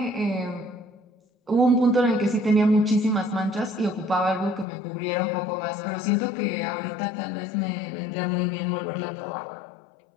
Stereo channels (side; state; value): right; drops out; at 4.7 s